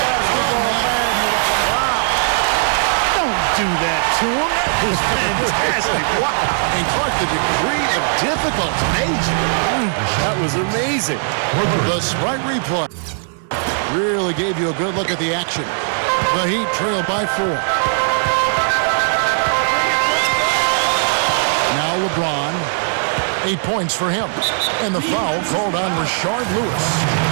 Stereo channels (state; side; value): silent; left; digital silence